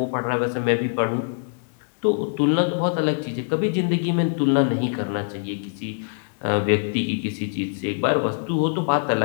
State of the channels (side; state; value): right; silent; digital silence